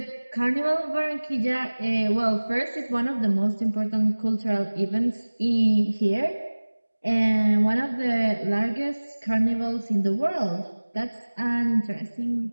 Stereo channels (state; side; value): inverted; both; correlation -1.00